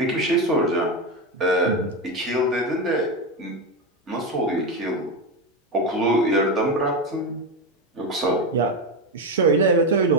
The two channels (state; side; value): normal; both; correlation 0.14